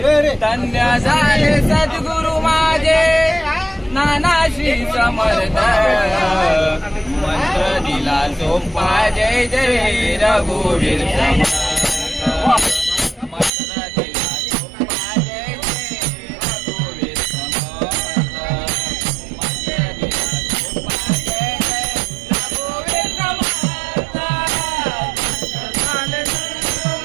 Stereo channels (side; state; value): left; drops out; at 13.5 s